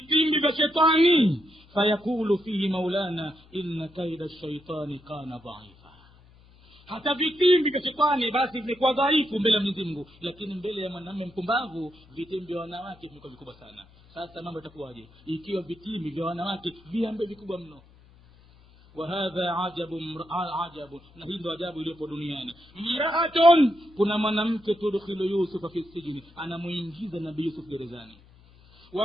vya shetani, fayakulu fihi maulana inna kaida shaitani kana dhaifa. Hata vitimbi vya shetani basi vimekuwa dhaifu mbele ya Mwenyezi Mungu, lakini mbele ya mwanamume mpumbavu vitimbi vya wanawake vimekuwa vikubwa sana. Sasa mambo yatakuwaje ikiwa vitimbi vya wanawake viambe vikubwa mno? Wa hadha ajabu, na hii ndio ajabu iliyopo duniani. Mraatun, kuna mwanamke tudkhilu Yusufa fi sijni, anamuingiza Nabii Yusuf gerezani.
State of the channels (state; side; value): noise; left; hum, 26 dB below the sound